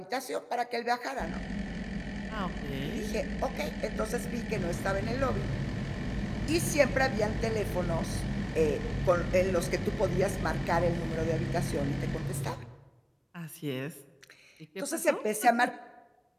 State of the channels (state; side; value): identical; both; correlation 1.00